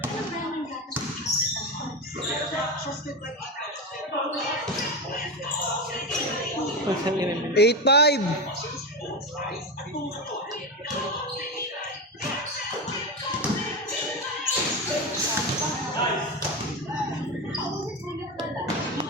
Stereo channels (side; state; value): both; normal; correlation 0.17